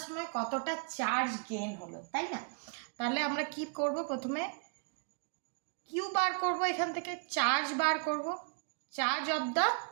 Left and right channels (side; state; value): left; quieter; 39.0 dB